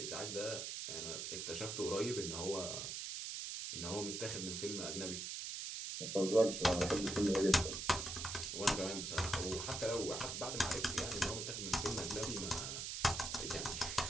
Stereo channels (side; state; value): right; noise; hiss, 4 dB below the sound